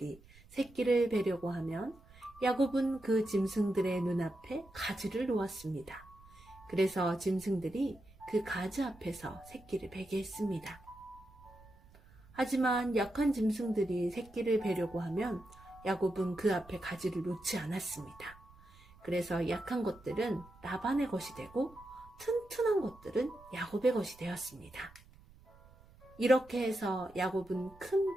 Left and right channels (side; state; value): right; noise; rumble, 24 dB below the sound